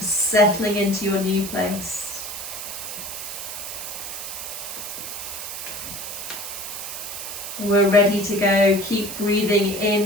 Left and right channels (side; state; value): right; noise; hiss, 7 dB below the sound